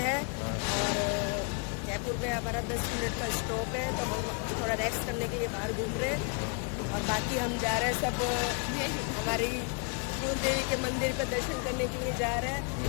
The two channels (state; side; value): quieter; right; 35.4 dB